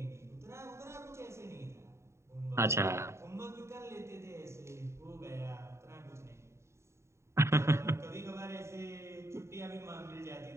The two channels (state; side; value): late; left; 0.13 ms